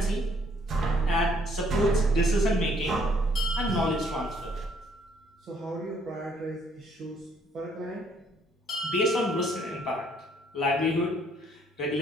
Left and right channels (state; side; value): normal; both; correlation 0.65